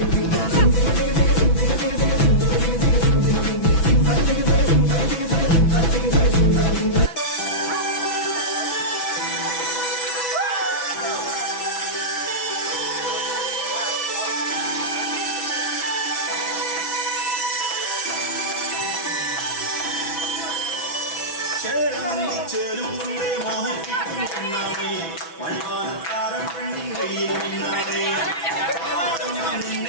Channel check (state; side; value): late; right; 6.0 ms